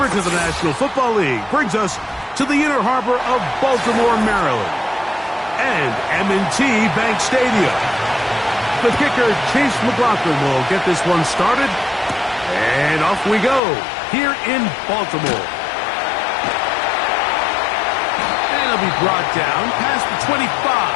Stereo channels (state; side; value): drops out; right; at 13.6 s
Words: of the National Football League brings us to the inner harbor of Baltimore, Maryland, and M&T Bank Stadium. The kicker, Chase McLaughlin, will get this one started. And off we go here in Baltimore. And it'll be brought down past the 25.